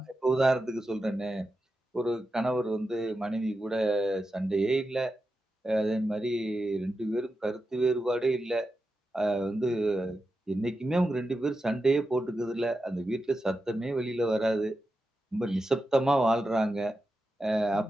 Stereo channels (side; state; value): both; normal; correlation 0.90